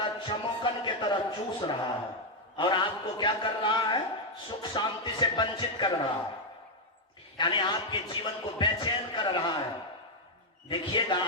चमोकन के तरह चूस रहा है और आपको क्या कर रहा है? सुख शांति से वंचित कर रहा है, यानी आपके जीवन को बेचैन कर रहा है। देखिएगा,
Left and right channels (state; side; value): normal; both; correlation 0.01